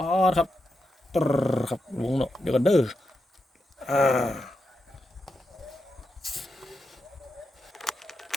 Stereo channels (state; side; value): normal; both; correlation 0.87